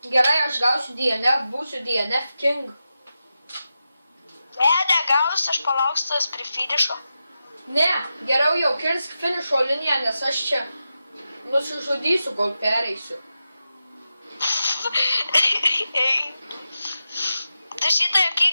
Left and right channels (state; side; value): inverted; both; correlation -0.90